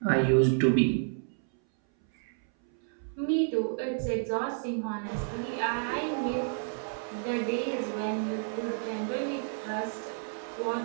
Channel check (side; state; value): left; silent; 58 dB below the other